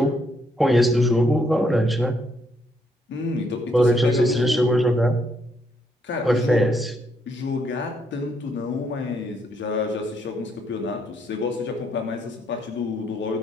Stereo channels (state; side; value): normal; both; correlation 0.73